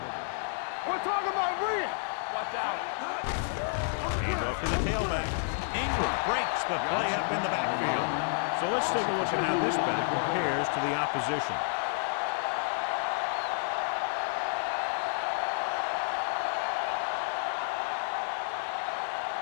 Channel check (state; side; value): silent; right; digital silence